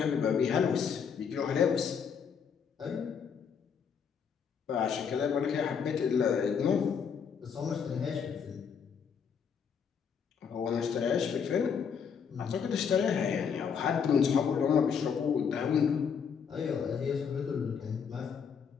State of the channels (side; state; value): right; quieter; 6.8 dB